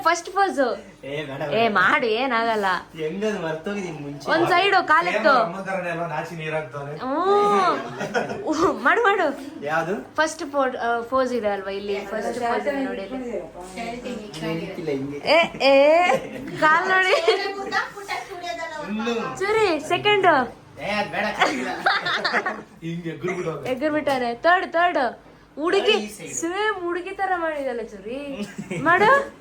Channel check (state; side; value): identical; both; correlation 1.00